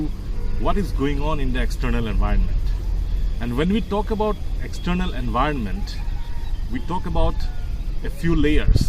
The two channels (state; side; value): identical; both; correlation 1.00